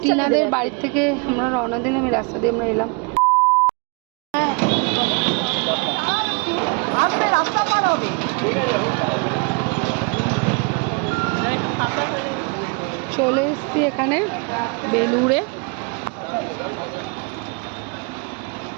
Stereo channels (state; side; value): quieter; left; 32.8 dB